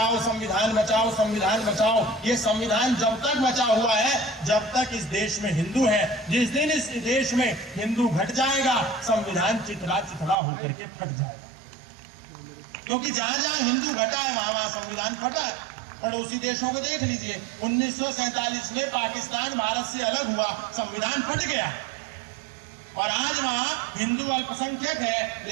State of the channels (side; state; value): left; drops out; at 10.4 s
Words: संविधान बचाओ संविधान बचाओ, ये संविधान जब तक बचा हुआ है जब तक इस देश में हिंदू है। जिस दिन इस देश में हिंदू घट जाएगा संविधान चिथड़ा चिथड़ा होकर के फट जाएगा। क्योंकि जहां जहां हिंदू घटा है वहां वहां संविधान फटा है। पड़ोसी देशों को देख लीजिए, 1947 में पाकिस्तान भारत से अलग हुआ, संविधान फट गया और आज वहां हिंदू अल्पसंख्यक है,